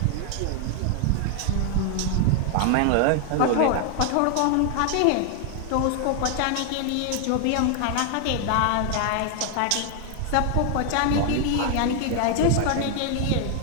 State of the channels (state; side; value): different; both; correlation 0.00